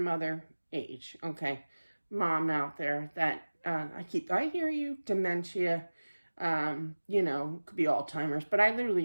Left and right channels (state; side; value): inverted; both; correlation -1.00